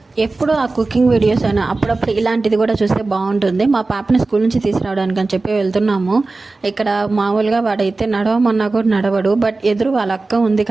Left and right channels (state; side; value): quieter; left; 3.5 dB